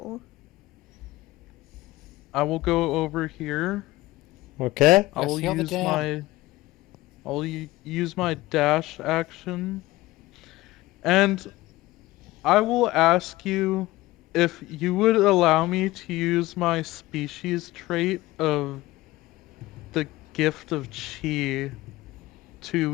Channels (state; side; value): quieter; right; 18.3 dB